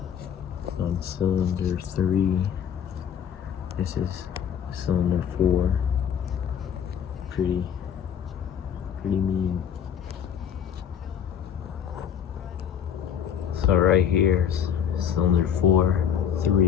on cylinder 3. This is cylinder 4. Pretty mean. So right here, cylinder 4,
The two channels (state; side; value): quieter; right; 8.6 dB